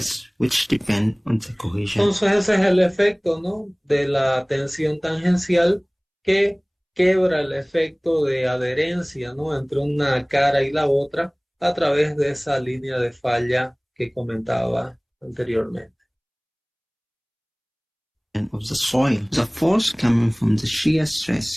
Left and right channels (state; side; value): identical; both; correlation 1.00